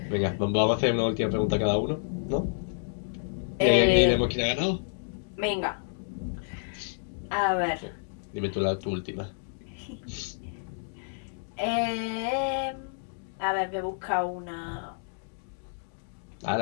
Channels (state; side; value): silent; right; digital silence